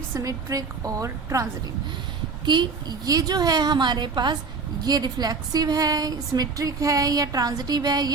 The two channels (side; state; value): left; quieter; 4.6 dB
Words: symmetric और transitive। कि ये जो है हमारे पास ये रिफ्लेक्सिव है, सिमेट्रिक है या ट्रांजिटिव है,